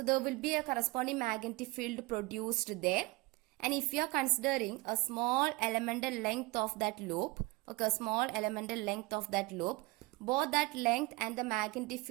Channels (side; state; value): left; quieter; 23.5 dB